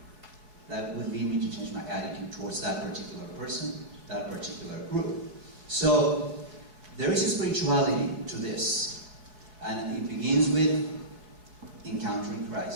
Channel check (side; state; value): left; late; 4.6 ms